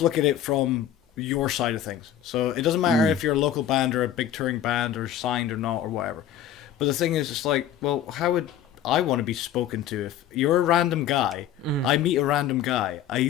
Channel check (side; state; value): right; quieter; 10.2 dB